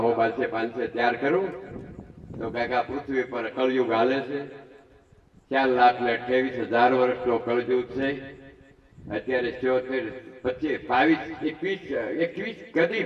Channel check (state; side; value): identical; both; correlation 1.00